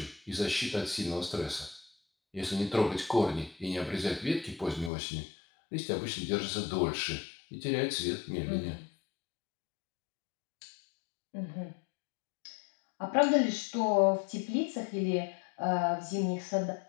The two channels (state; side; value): drops out; right; at 4.9 s